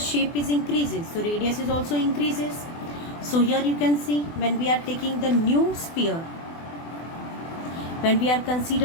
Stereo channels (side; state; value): right; late; 24 ms